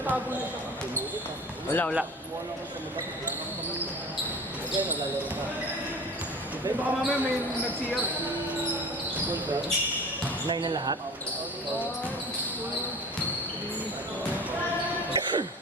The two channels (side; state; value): both; normal; correlation 0.39